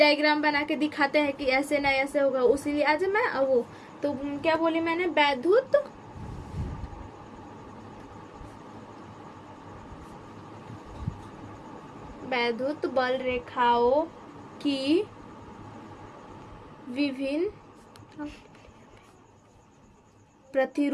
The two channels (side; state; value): both; identical; correlation 1.00